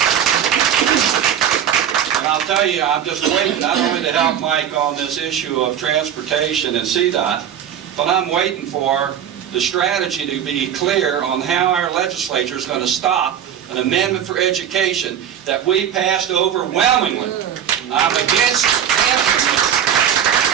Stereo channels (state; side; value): quieter; left; 9.2 dB